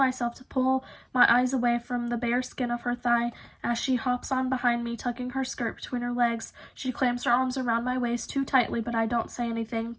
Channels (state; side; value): identical; both; correlation 1.00